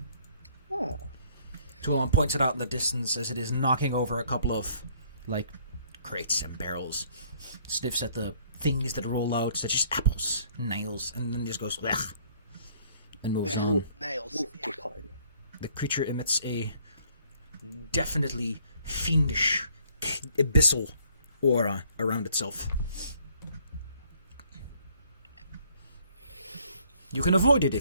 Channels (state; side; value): inverted; both; correlation -0.62